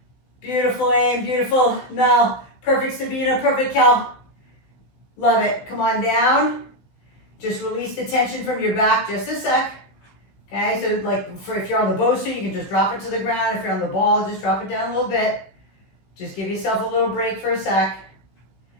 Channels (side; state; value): right; late; 16 ms